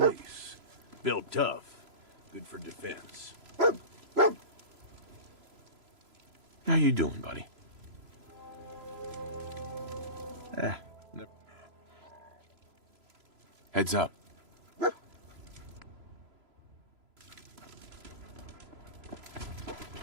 Built tough. Good for defense. How you doing, buddy? Heads up.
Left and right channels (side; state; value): left; late; 3.0 ms